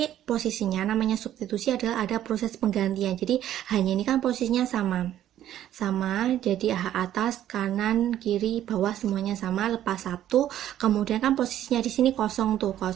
posisinya namanya substitusi adalah ada proses penggantian. Jadi hanya ini kan posisinya sama, jadi atas, kanan, kiri, bawah semuanya sama, lepas 1. Kemudian kan posisinya di sini kosong tuh,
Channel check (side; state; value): left; quieter; 11.9 dB